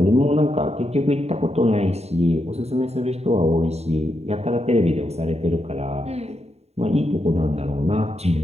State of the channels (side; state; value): left; late; 0.31 ms